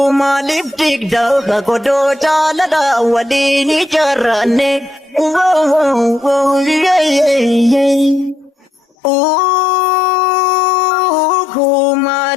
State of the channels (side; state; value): right; drops out; at 8.8 s